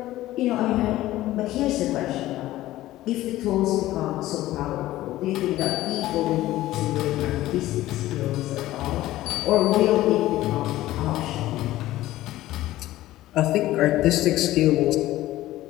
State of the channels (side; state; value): right; quieter; 15.7 dB